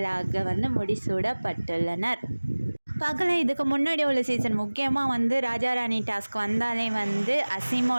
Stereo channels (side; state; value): both; inverted; correlation -1.00